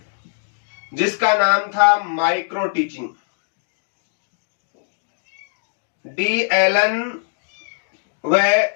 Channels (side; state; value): right; silent; digital silence